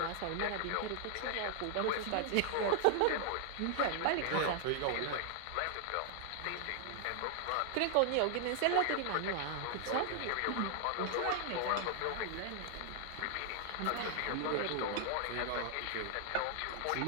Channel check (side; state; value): both; different; correlation 0.00